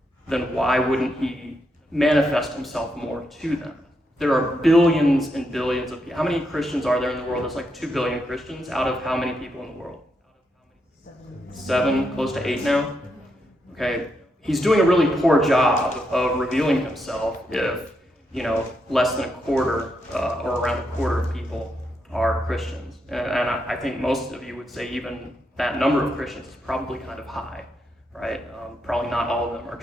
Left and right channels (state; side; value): normal; both; correlation 0.81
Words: then why wouldn't he manifest himself more to them? There are billions and billions of people. How many Christians are there in the world? There's like 2 billion Christians out of how many people in the world? 7, close to 8 now? Okay, he's doing a really poor job of revealing himself if, less than a quarter or around a quarter of people are Christians. And I think most of you would say even that number of Christians is probably kind of high, right? Probably not all of them are